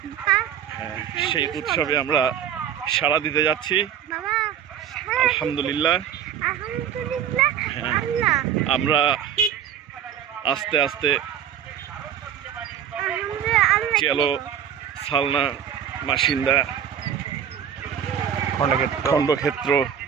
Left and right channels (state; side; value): quieter; left; 9.1 dB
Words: সেই উৎসবে আমরা সাড়া দিতে যাচ্ছি। আলহামদুলিল্লাহ। আমরা আস্তে আস্তে চেলো, সালনা, মাসিন্দা, খণ্ডক্ষেত্র